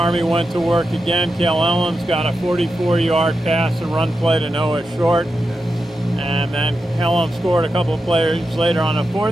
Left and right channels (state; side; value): normal; both; correlation 0.89